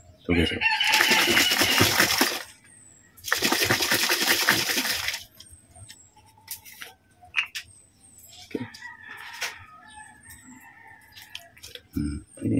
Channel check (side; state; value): both; identical; correlation 1.00